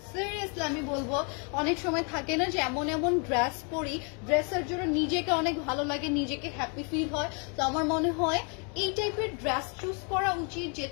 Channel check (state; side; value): quieter; right; 37.2 dB